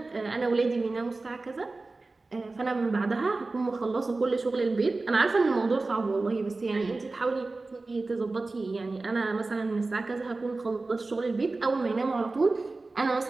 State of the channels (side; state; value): left; quieter; 3.4 dB